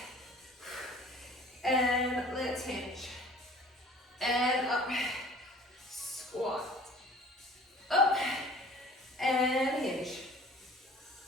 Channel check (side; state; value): both; normal; correlation 0.48